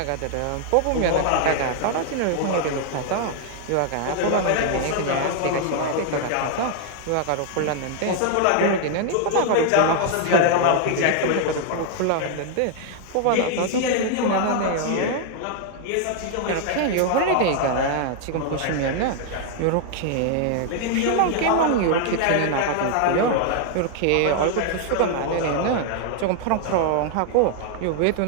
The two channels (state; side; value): different; both; correlation 0.00